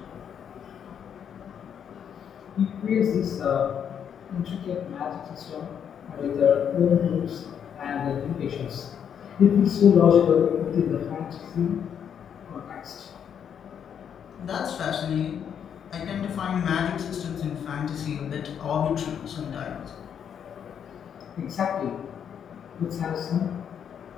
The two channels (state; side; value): quieter; right; 8.3 dB